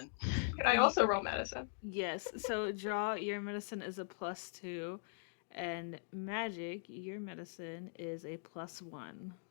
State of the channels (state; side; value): silent; right; digital silence